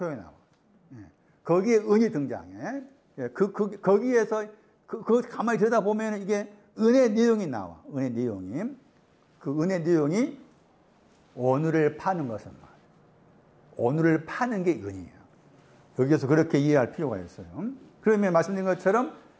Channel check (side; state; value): both; identical; correlation 1.00